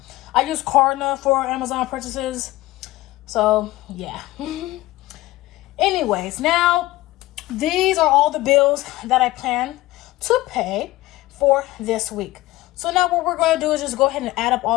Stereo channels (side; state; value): right; quieter; 17.9 dB